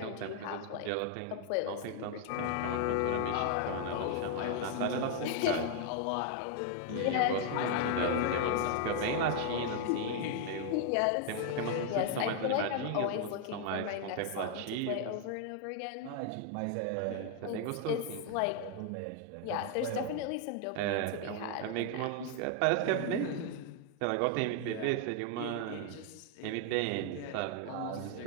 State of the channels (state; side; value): different; both; correlation 0.00